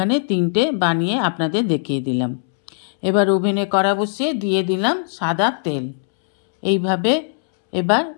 3টে বানিয়ে আপনাদের দেখিয়ে দিলাম। এবার ওভেনে কড়া বসিয়ে দিয়ে দিলাম সাদা তেল। এইভাবে এবার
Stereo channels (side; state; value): right; silent; 66 dB below the other